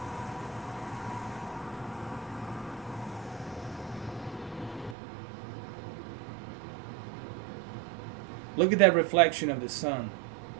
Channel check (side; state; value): left; drops out; at 5.0 s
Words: Look at that reflection of the sun